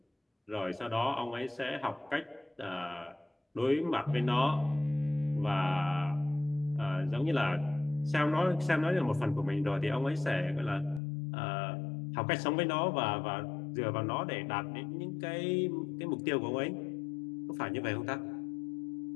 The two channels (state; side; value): drops out; right; at 11.0 s